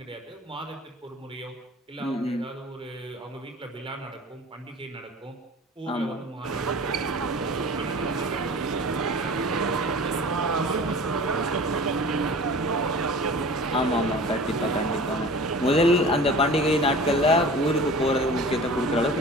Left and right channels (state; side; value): normal; both; correlation 0.40